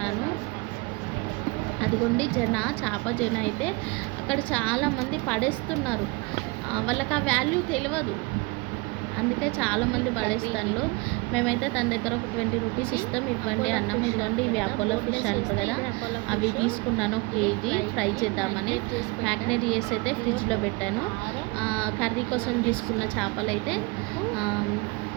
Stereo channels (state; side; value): quieter; left; 26.5 dB